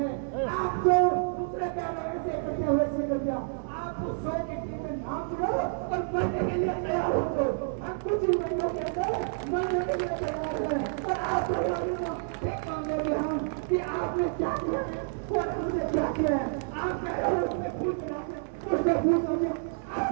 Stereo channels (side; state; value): left; silent; digital silence